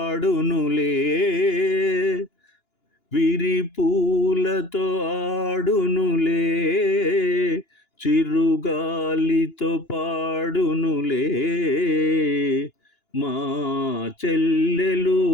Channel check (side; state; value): right; late; 2.9 ms